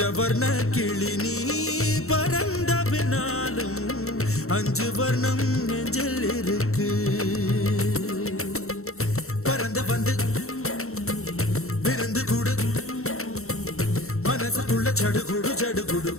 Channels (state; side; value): late; right; 0.63 ms